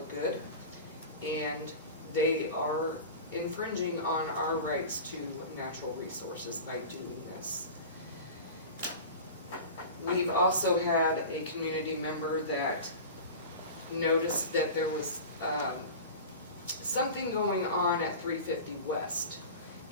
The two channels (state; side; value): inverted; both; correlation -0.33